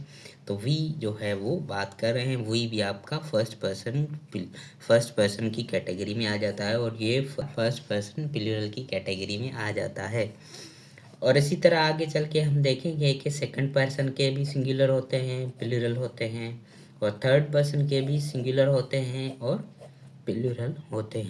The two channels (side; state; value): both; identical; correlation 1.00